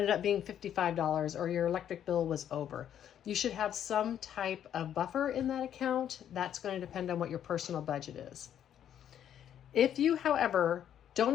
up being $55 or your electric bill was over. You should have some type of buffer in that account. That's going to depend on what your personal budget is. If you, however,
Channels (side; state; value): right; quieter; 9.9 dB